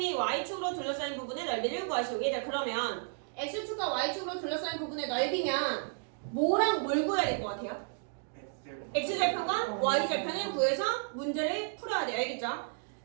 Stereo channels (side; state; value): left; silent; digital silence